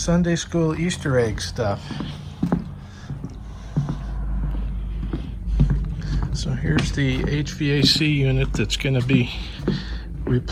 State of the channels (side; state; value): both; identical; correlation 1.00